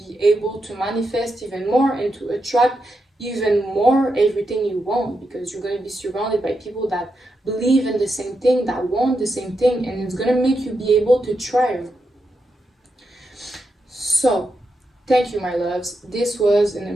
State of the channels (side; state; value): both; normal; correlation 0.85